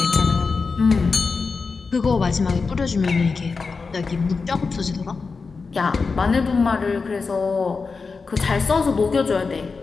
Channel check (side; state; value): right; quieter; 4.6 dB